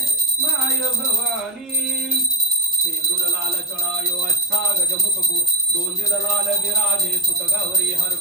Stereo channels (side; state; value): both; normal; correlation 0.10